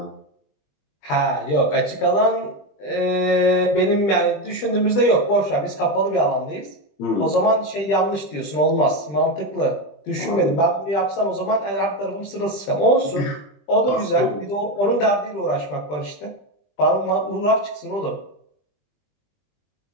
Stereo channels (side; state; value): right; late; 20 ms